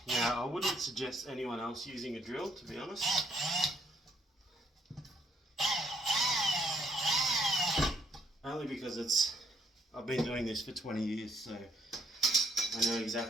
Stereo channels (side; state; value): both; normal; correlation 0.69